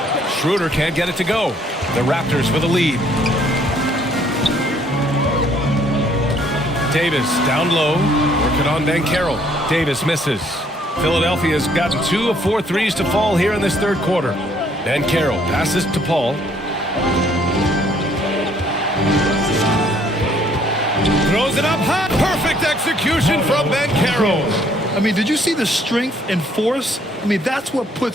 Schroeder can't get it to go. The Raptors with a lead. Davis down low, working on Banchero. Davis misses. Philadelphia's gotten 2 of 4 threes to fall here in this third quarter. Banchero passes to Paul. Throws it up high. Perfect execution from Banchero. I mean, did you see the strength and force? I mean, that's what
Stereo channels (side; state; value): both; normal; correlation 0.64